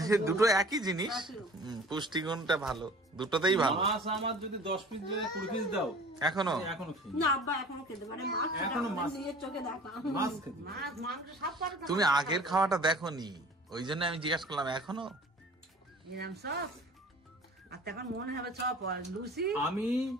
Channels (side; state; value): both; normal; correlation 0.45